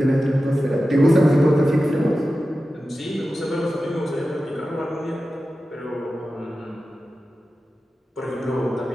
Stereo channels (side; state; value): both; normal; correlation 0.94